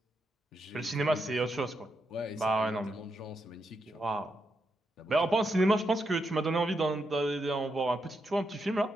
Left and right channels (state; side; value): normal; both; correlation 0.83